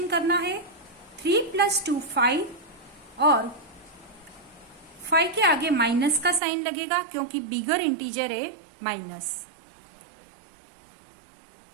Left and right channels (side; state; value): left; drops out; at 6.4 s